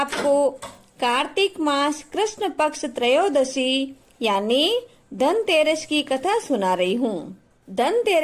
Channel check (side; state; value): both; identical; correlation 1.00